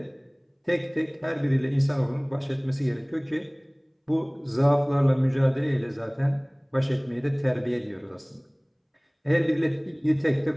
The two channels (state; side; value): identical; both; correlation 1.00